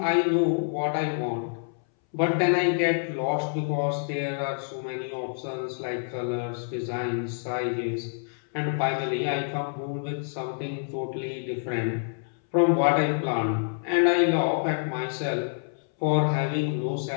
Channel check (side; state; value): right; silent; 60 dB below the other